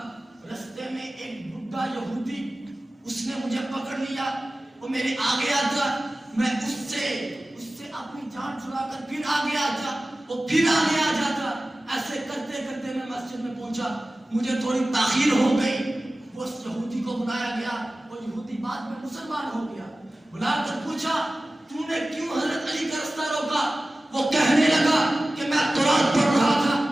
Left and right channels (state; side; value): normal; both; correlation 0.96